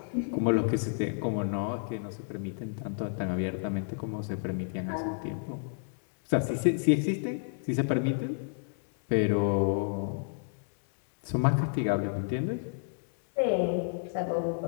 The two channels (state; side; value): silent; right; digital silence